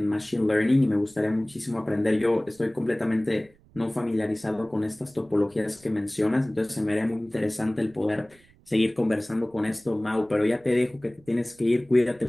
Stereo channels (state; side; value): noise; right; rumble, 29 dB below the sound